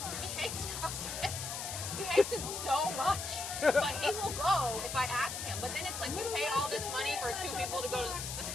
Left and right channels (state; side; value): noise; left; hiss, 5 dB below the sound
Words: he hates CrossFit. He hates it so much, but he will go if I ask him. But then it's like you paid all this money for 2 people to go to